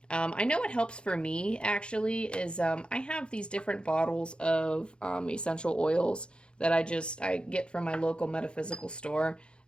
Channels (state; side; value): late; right; 0.054 ms